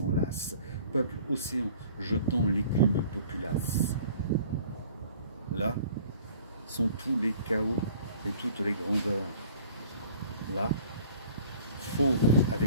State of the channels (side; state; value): both; inverted; correlation -0.50